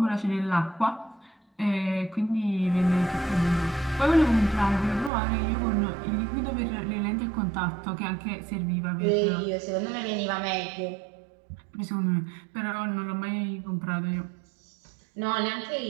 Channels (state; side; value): drops out; left; at 5.1 s